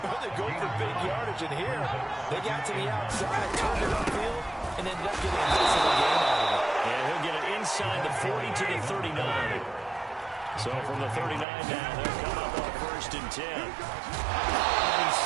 or they go for big yardage. And here, they got to the outside, turned it upfield, and ended up getting a nice little gain out of it. And he'll get it inside the 40 to the 39. So from the 39 now, they'll come up on 1st and 10. And he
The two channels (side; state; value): left; drops out; at 11.5 s